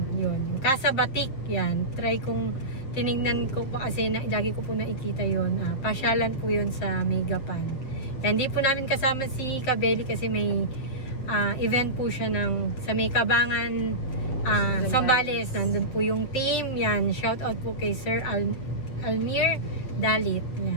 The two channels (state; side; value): late; right; 8.3 ms